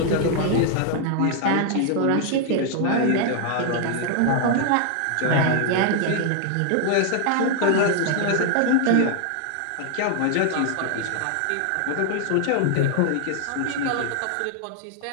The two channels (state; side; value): different; both; correlation 0.00